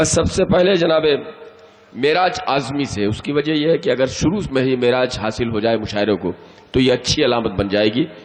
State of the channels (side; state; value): both; identical; correlation 1.00